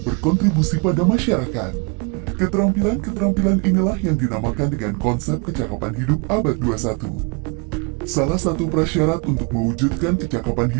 berkontribusi pada masyarakat. Keterampilan-keterampilan inilah yang dinamakan dengan konsep kecakapan hidup abad 21. Salah satu prasyarat untuk mewujudkan kecakapan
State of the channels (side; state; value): left; quieter; 31.6 dB